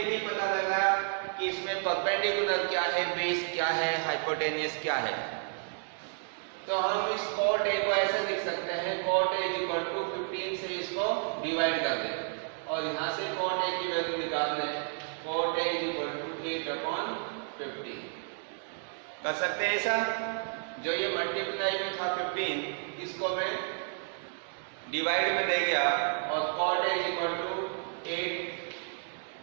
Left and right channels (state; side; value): silent; left; 57 dB below the other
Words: नहीं पता लग रहा कि इसमें परपेंडिकुलर क्या है, बेस क्या है, हाइपोटेनियस क्या है। तो हम इस cot A को ऐसे लिख सकते हैं, cot A इक्वल टू 15 से इसको डिवाइड कर दें और यहाँ से cot A की वैल्यू निकाल लें। cot A इक्वल टू 8/15 कर सकते हैं ऐसा। जो ये मल्टीप्लाई में था 15, इसको मैं डिवाइड में दे गया और cot A इक्वल टू